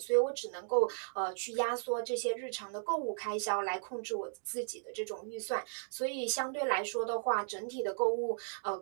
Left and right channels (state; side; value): silent; left; digital silence